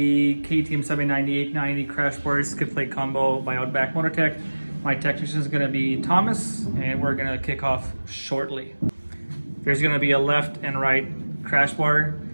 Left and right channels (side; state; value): both; inverted; correlation -1.00